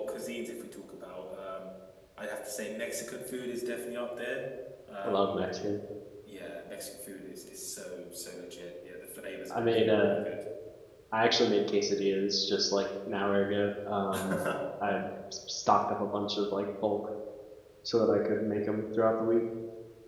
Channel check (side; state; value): both; identical; correlation 1.00